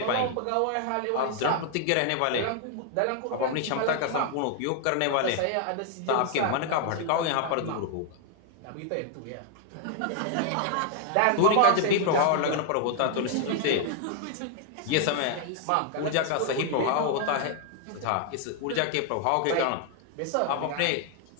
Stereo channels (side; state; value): both; different; correlation 0.00